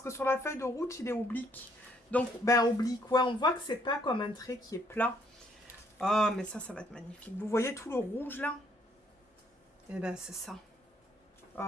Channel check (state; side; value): normal; both; correlation 0.68